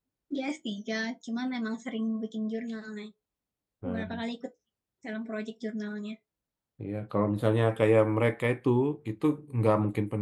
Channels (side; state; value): both; identical; correlation 1.00